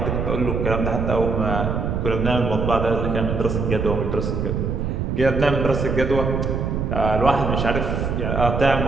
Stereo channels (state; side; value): noise; right; rumble, 1 dB below the sound